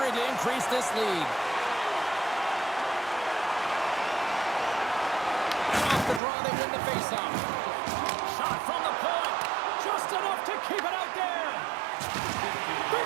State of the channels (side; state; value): left; drops out; at 6.2 s